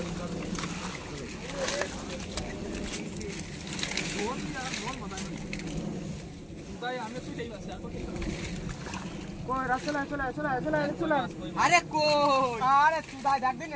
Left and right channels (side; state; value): both; identical; correlation 1.00